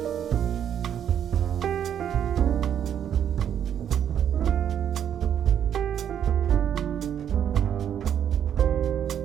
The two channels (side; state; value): left; quieter; 9.3 dB